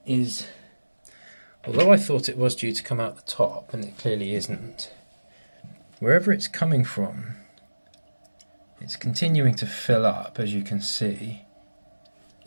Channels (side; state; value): both; inverted; correlation -1.00